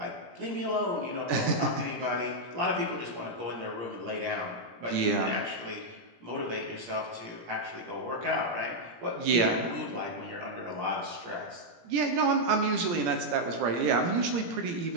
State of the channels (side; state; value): left; late; 17 ms